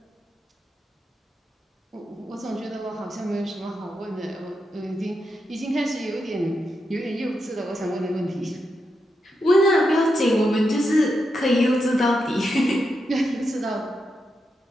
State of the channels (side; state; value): both; normal; correlation 0.85